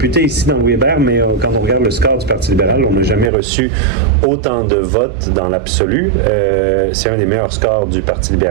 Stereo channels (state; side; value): drops out; left; at 3.3 s